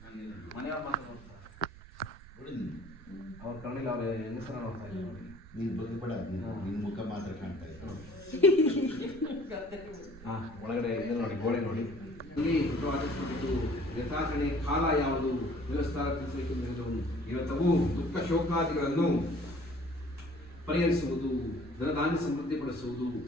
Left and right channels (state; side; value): noise; right; rumble, 18 dB below the sound